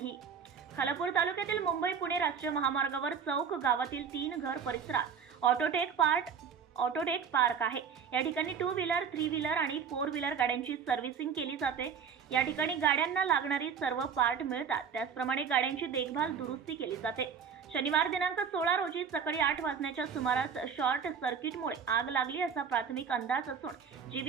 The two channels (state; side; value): quieter; left; 6.8 dB